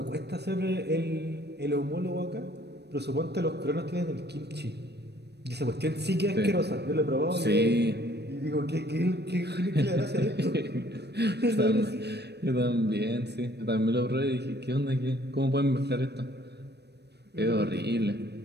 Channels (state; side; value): late; left; 0.48 ms